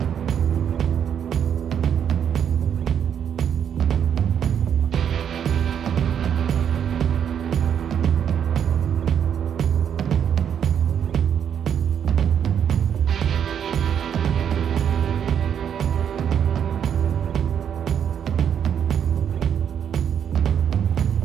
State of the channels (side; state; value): left; quieter; 8.5 dB